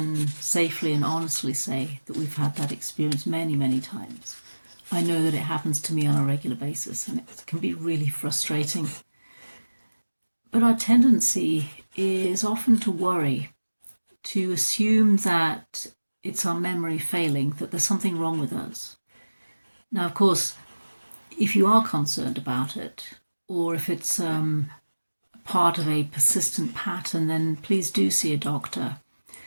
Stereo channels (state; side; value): inverted; both; correlation -1.00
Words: safely and honestly say that we've had that experience many, many times. I know that it happens to me on a regular basis and it can be really frustrating. But our tendency is often to worry, to assume that it's our memory failing, that there's something wrong with us. Now, of course, if you are concerned about it, or if it's part of a persistent pattern, then please do see a doctor.